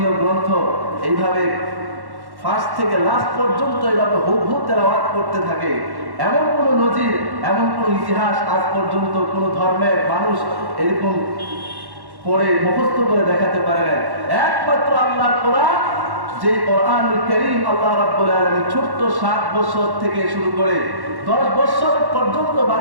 গ্রন্থ এইভাবে ফার্স্ট থেকে লাস্ট পর্যন্ত এইভাবে হুবহু তেলাওয়াত করতে থাকে। এমন কোন নজির, এমন কোন ইতিহাস আজ পর্যন্ত কোন ধর্মের মানুষ এরকম পড়ে মুখস্থ করে দেখাতে পারে না। একমাত্র আল্লাহর কোরআন, যে কোরআনুল কারীম আল্লাহ রাব্বুল আলামিন ছোট্ট 7 বছর থেকে শুরু করে 10 বছর পর্যন্ত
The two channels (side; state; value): left; late; 1.1 ms